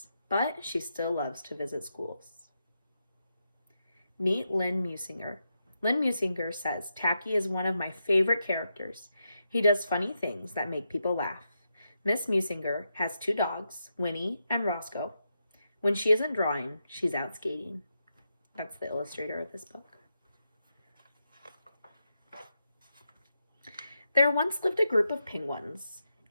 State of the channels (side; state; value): both; inverted; correlation -0.85